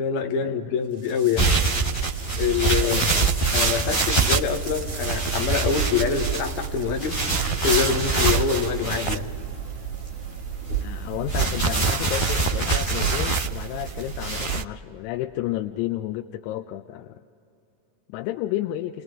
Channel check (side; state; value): right; late; 12 ms